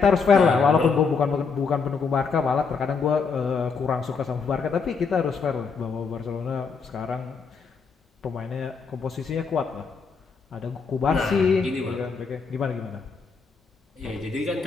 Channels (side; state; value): right; quieter; 5.2 dB